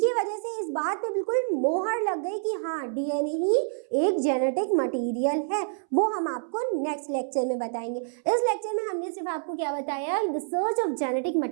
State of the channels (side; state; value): left; silent; 60 dB below the other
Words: वजह से इस बात पे बिल्कुल मोहर लग गई कि हाँ, डीएनए ही एक जेनेटिक मटेरियल है। वो हम आपको नेक्स्ट लेक्चर में बताएंगे। इस लेक्चर में हमने सिर्फ आपको क्या बताया, the search of genetic